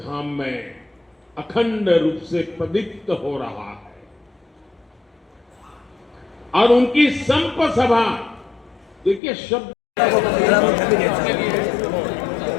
में अखंड रूप से प्रदीप्त हो रहा है। और उनकी संप सभा, देखिए शब्द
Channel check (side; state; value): right; drops out; at 9.2 s